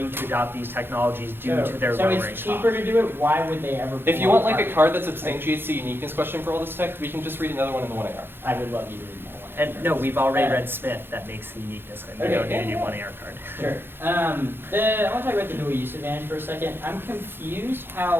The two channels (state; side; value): late; left; 0.10 ms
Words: to adopt these technologies due to their so lowering it's cheaper costs. to do it. Why would they ever? If you pull want like a carbon? card that substantiates the uniqueness question for all this tech, we can just read another one in the 1AR. I would love you to read more. And no, we've already Uh, read Smith. That makes the uniqueness, and we Okay, don't need a yeah, new yeah. 1AR card. Sure. I want to talk about the dual use advantage for a second. I'm confused